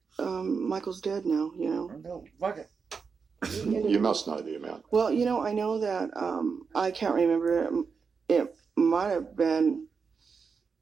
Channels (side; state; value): left; quieter; 5.4 dB